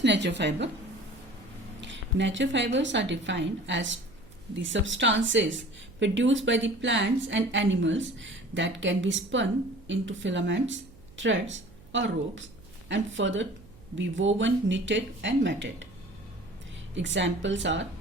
natural fiber? Natural fibers are defined as the substances produced by the plants and animals that can be spun into filaments, threads or ropes and further be woven, knitted and matted. Examples are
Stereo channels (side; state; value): right; noise; hum, 23 dB below the sound